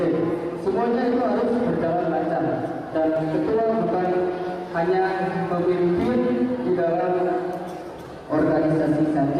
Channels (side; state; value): both; identical; correlation 1.00